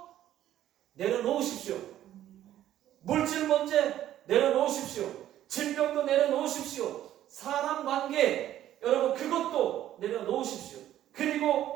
내려놓으십시오. 물질 문제 내려놓으십시오. 질병도 내려놓으십시오. 사람 관계, 여러분 그것도 내려놓으십시오.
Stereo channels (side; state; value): left; quieter; 12.3 dB